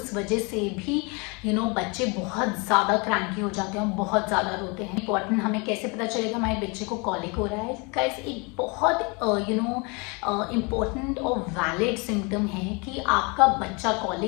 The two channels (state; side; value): quieter; right; 30.3 dB